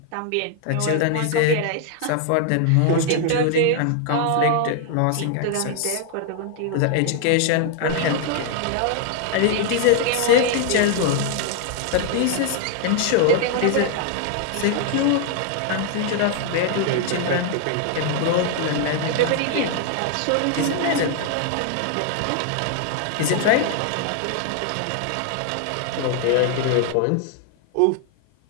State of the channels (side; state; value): both; different; correlation 0.00